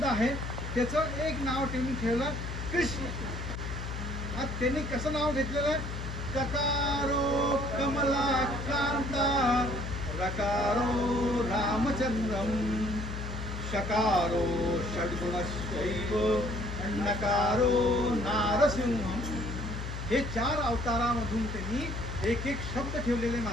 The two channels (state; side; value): noise; left; hum, 6 dB below the sound